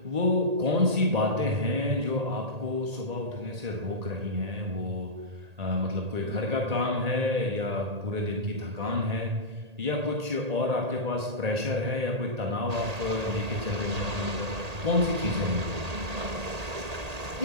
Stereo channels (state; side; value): late; left; 1.8 ms